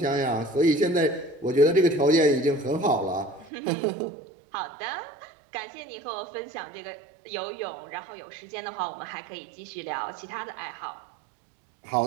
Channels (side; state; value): left; drops out; at 3.5 s